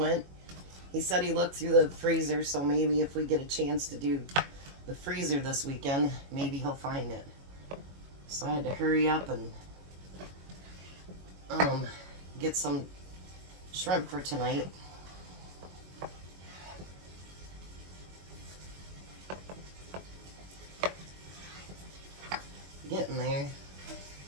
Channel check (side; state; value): left; late; 21 ms